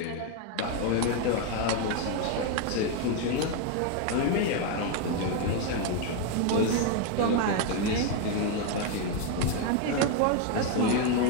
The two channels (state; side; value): different; both; correlation 0.02